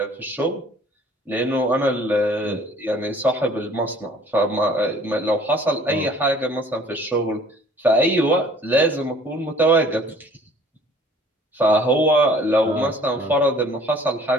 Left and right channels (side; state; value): both; normal; correlation 0.53